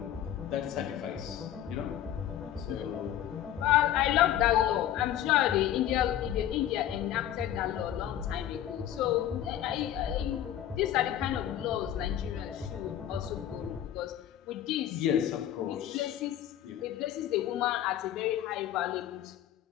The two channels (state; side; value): quieter; right; 11.4 dB